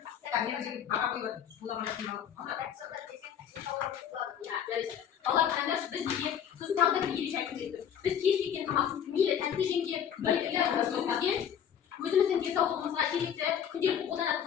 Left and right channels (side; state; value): right; quieter; 8.9 dB